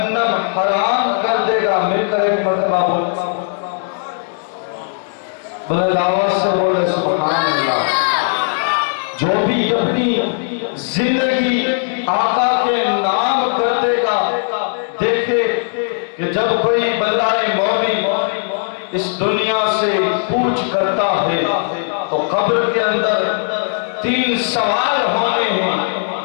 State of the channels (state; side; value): silent; right; digital silence